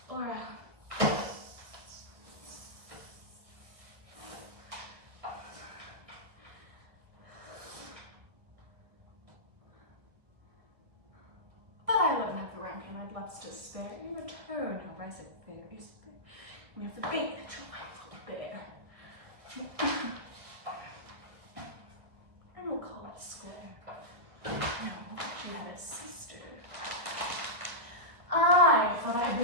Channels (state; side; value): late; left; 1.4 ms